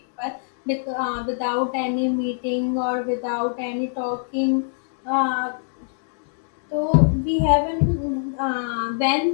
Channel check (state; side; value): silent; right; digital silence